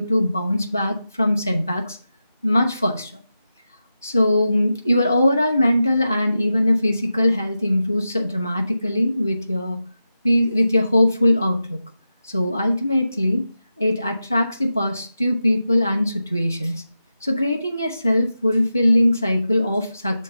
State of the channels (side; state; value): both; inverted; correlation -0.91